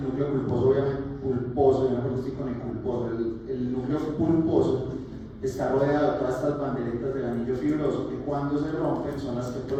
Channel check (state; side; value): identical; both; correlation 1.00